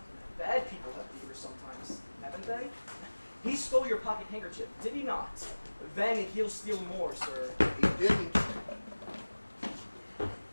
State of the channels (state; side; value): inverted; both; correlation -1.00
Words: Bad people have fevers sometimes, haven't they? He stole your pocket handkerchief, did he not? Then he'll steal more, sir. He didn't.